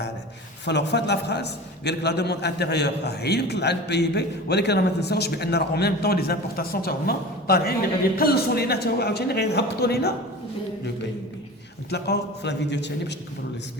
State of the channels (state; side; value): normal; both; correlation 0.34